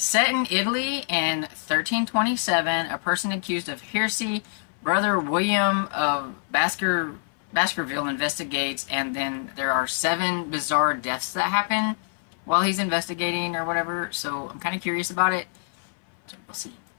in Italy in 1327, a person accused of heresy, Brother William of Baskerville investigates, and then there are 7 bizarre deaths that happen while he's investigating or whatever. So I'm kind of curious about it. So we'll see.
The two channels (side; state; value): right; silent; 59 dB below the other